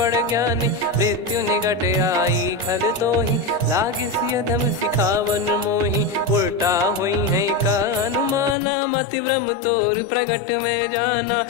ज्ञानी मृत्यु निकट आई खल तो ही लागे सियधम सिखावन मोही उल्टा हुई है का अनुमाना मति ब्रह्म तोर प्रगट में जाना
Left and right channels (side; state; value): right; drops out; at 8.6 s